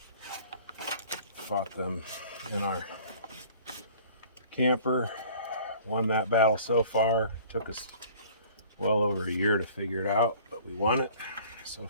Fought them in our camper, won that battle so far. Took us well over a year to figure it out, but we won it so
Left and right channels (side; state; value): both; inverted; correlation -0.49